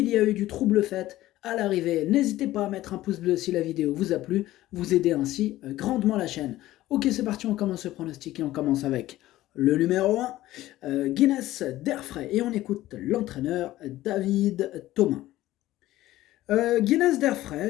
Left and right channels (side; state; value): right; quieter; 15.6 dB